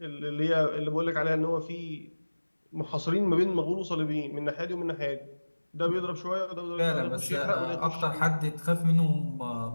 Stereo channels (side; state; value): both; inverted; correlation -1.00